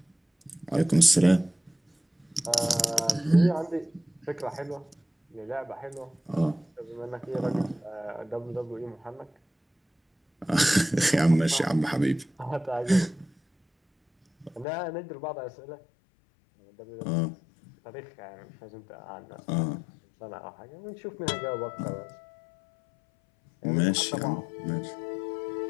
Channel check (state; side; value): drops out; right; at 14.7 s